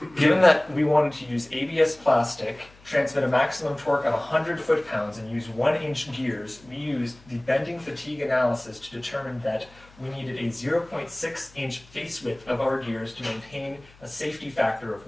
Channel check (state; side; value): noise; left; hum, 26 dB below the sound